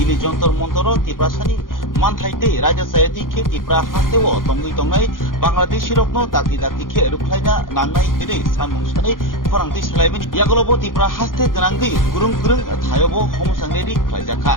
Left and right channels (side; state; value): right; late; 0.90 ms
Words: जन्तर मन्तर तिप्रासानि मानथाइते राजा सायाति खे तिप्रा हास्तेव तंगै तंगै बांग्लादेशी रकनो दागि दागि खे रुख्लायना नांनाय दिनै सानमुं सानै खरांथि सालायबाय यागलबो तिप्रा हास्ते गोनांगै गुरुं गुरुं थायबो हमसांरेदि खालायजाखा